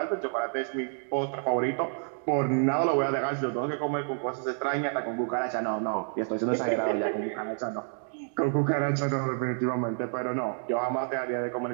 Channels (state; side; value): silent; left; 59 dB below the other